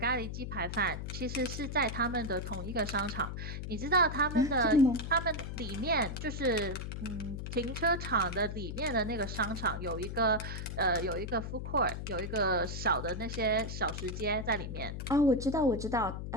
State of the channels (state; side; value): noise; left; hum, 6 dB below the sound